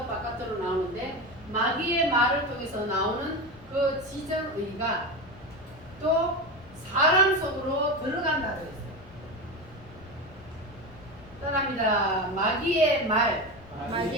바깥으로 나오는데 마귀의 말을 통해서 나오는 그 지정의가 또 사람 속으로 들어간다 그랬어요. 말합니다. 마귀의 말,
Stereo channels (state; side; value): noise; left; rumble, 21 dB below the sound